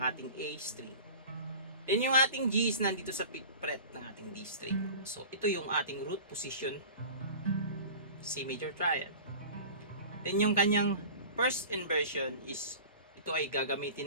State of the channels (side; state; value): both; inverted; correlation -0.38